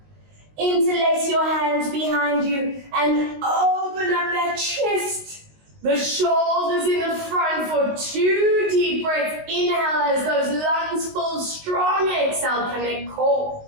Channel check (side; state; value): left; late; 19 ms